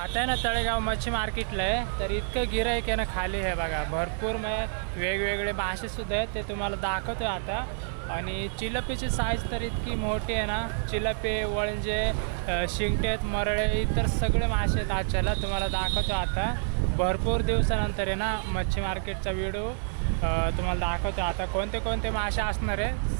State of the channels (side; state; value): left; silent; 59 dB below the other